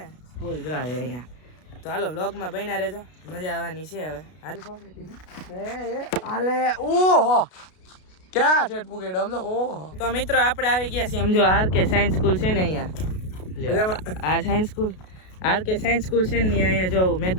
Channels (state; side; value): late; right; 33 ms